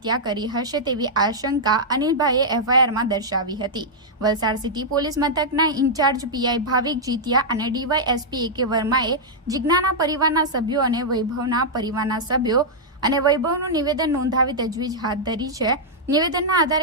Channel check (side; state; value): both; normal; correlation -0.07